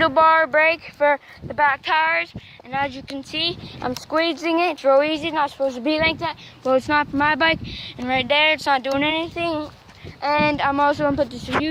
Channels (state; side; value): identical; both; correlation 1.00